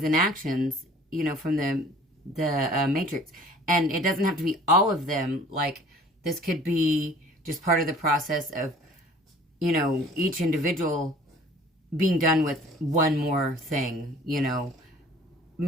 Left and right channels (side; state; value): both; normal; correlation 0.50